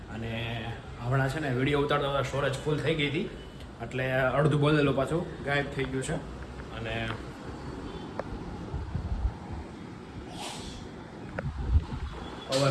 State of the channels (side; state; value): both; identical; correlation 1.00